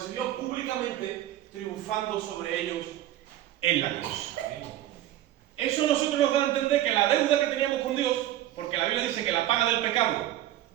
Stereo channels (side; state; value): left; quieter; 13.4 dB